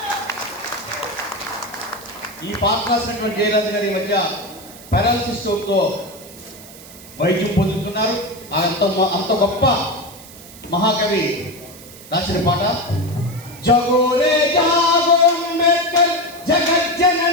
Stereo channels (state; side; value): noise; right; hiss, 18 dB below the sound